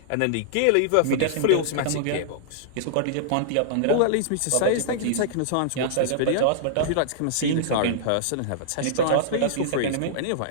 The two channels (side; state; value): both; different; correlation -0.02